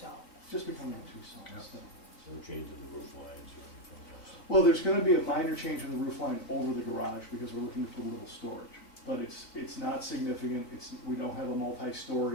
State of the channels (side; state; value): right; late; 4.0 ms